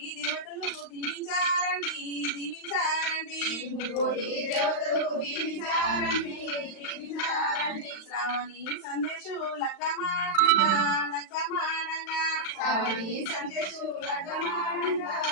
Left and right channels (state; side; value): late; right; 35 ms